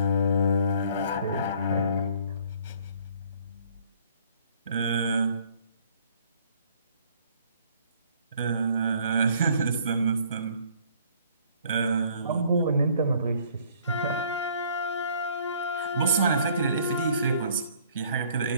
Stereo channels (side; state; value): both; inverted; correlation -0.59